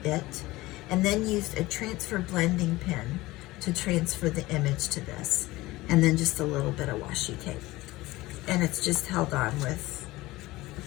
it and then used a transfer blending pen to transfer the image to this. And then just a little bit of washi tape. And it's just held on with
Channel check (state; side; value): quieter; right; 19.1 dB